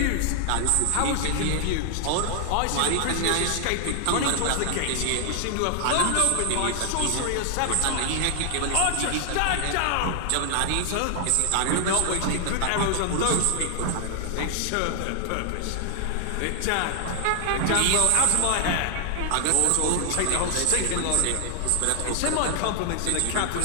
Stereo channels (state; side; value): different; both; correlation 0.00